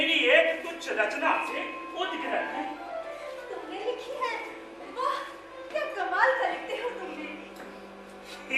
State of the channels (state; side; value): identical; both; correlation 1.00